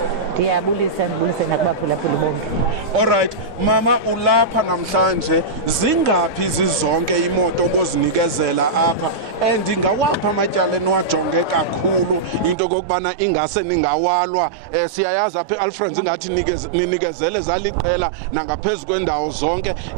Ndiyabulisa nakubaphulaphuli bonke. Alright mama, ulapha namhlanje, zingaphi zizonke imoto obozinikezela apha and ingawapha amatyala eniwajonge kakhulu into kokubana ingase ningawalwa? Siyayazi apha eAlfred ingathi ninikezele zaliqela nangaphezu kwendawo zonke,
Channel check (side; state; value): left; drops out; at 12.6 s